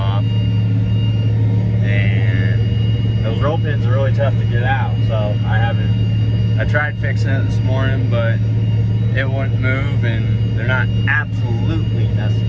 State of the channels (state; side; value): identical; both; correlation 1.00